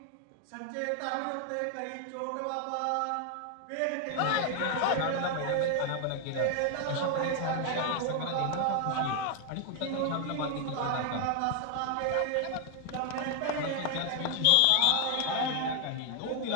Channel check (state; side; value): different; both; correlation 0.00